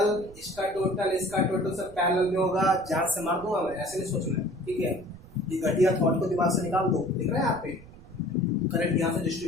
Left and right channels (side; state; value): right; noise; rumble, 19 dB below the sound